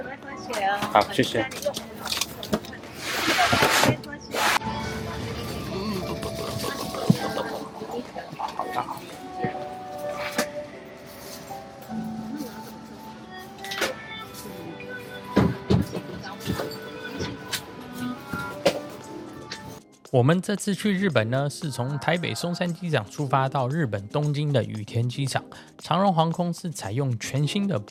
好，谢谢。我们这次去日本呢，是从台北松山机场出发到日本东京的羽田机场。长荣航空是采用全新的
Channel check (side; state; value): both; identical; correlation 1.00